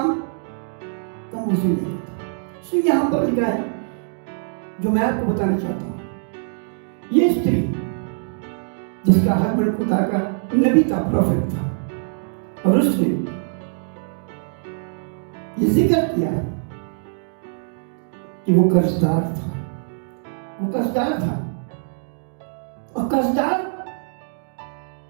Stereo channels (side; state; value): left; silent; digital silence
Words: कम उसे नहीं करता। सो यहाँ पर लिखा है जो मैं आपको बताना चाहता हूँ, ये स्त्री जिसका हस्बैंड खुदा का नबी था, प्रॉफिट था, और उसने ये जिक्र किया कि वो कर्जदार था, वो कर्जदार था, और